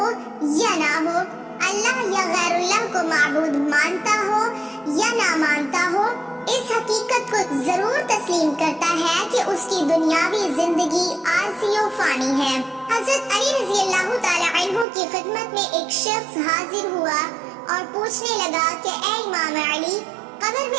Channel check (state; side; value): drops out; left; at 14.9 s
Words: یا نہ ہو، اللہ یا غیر اللہ کو معبود مانتا ہو یا نہ مانتا ہو، اس حقیقت کو ضرور تسلیم کرتا ہے کہ اس کی دنیاوی زندگی عارضی و فانی ہے۔ حضرت علی رضی اللہ تعالی عنہ کی خدمت میں ایک شخص حاضر ہوا اور پوچھنے لگا کہ اے امام علی، قبر